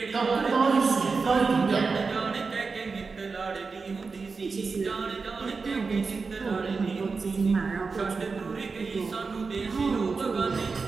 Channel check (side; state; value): left; quieter; 4.6 dB